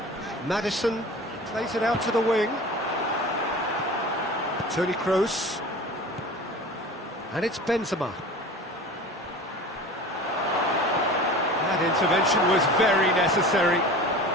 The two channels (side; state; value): both; normal; correlation 0.37